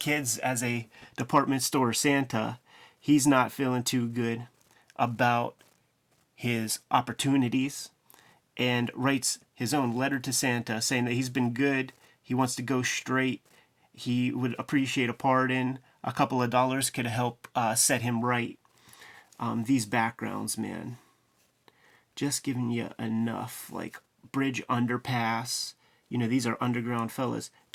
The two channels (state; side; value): identical; both; correlation 1.00